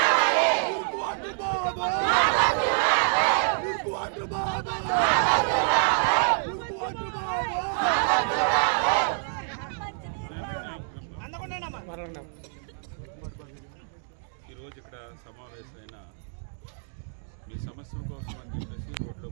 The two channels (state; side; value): silent; left; digital silence